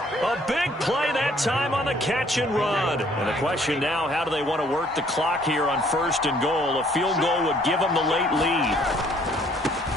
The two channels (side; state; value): both; normal; correlation 0.61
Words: A big play that time on the catch and run. And the question now, how do they want to work the clock here on 1st and goal? A field goal would give them the late lead.